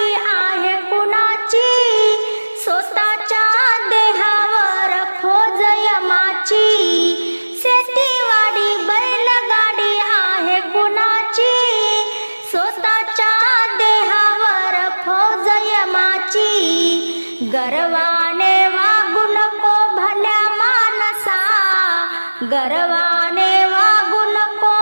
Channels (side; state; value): both; inverted; correlation -1.00